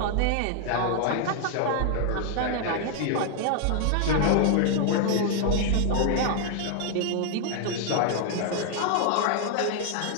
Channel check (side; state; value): both; different; correlation 0.00